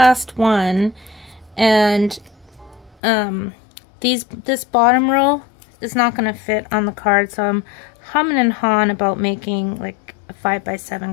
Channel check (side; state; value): right; drops out; at 3.0 s